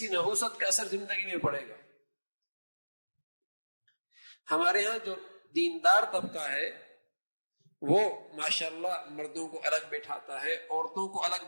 نحوست کا اثر زندگی میں پڑے گا۔ ہمارے ہاں جو دیندار طبقہ ہے وہ ماشاءاللہ مردوں کو الگ بٹھاتا ہے، عورتوں کو الگ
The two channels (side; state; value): both; inverted; correlation -1.00